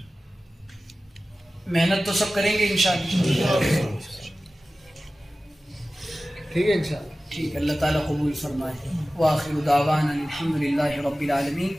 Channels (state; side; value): normal; both; correlation 0.96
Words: محنت تو سب کریں گے انشاءاللہ. ٹھیک ہے انشاءاللہ. ٹھیک. اللہ تعالیٰ قبول فرمائے. وآخر دعوانا الحمدللہ رب العالمین.